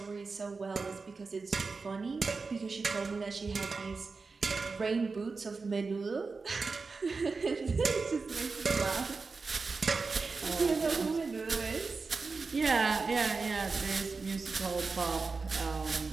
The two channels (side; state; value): left; quieter; 4.3 dB